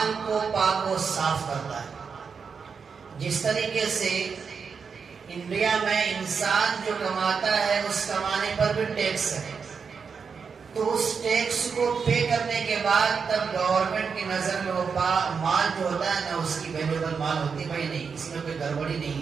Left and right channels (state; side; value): quieter; left; 5.8 dB